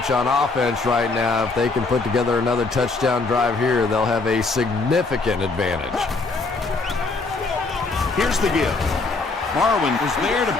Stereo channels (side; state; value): right; quieter; 3.7 dB